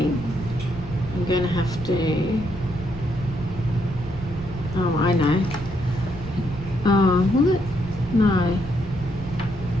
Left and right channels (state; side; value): noise; right; rumble, 14 dB below the sound